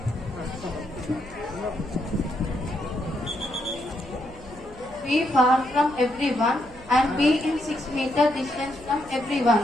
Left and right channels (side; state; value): right; noise; hum, 20 dB below the sound